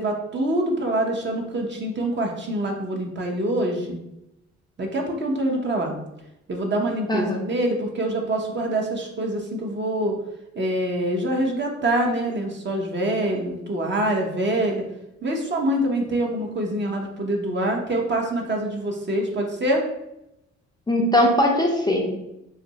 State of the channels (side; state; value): both; normal; correlation 0.38